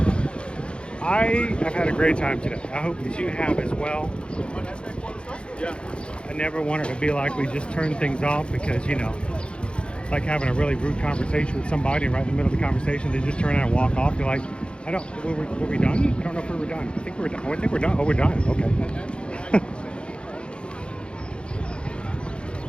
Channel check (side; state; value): right; late; 0.056 ms